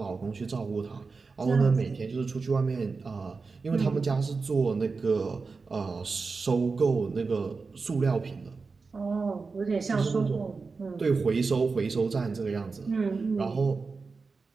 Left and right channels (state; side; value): quieter; left; 4.4 dB